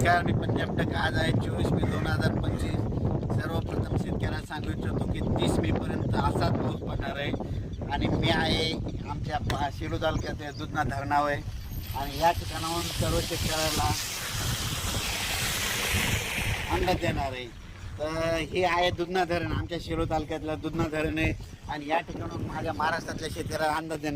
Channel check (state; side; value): identical; both; correlation 1.00